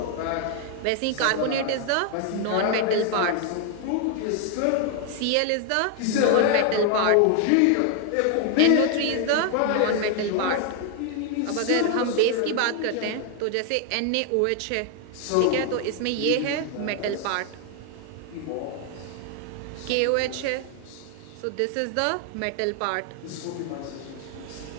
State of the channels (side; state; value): both; different; correlation 0.00